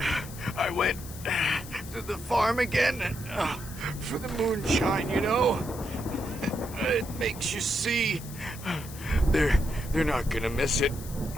I went to the farm again for the moonshine, you know? It makes you see. They're not gonna miss it.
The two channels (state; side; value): noise; left; hiss, 15 dB below the sound